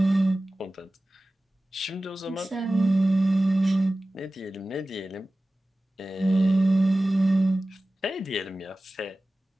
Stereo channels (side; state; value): both; normal; correlation 0.96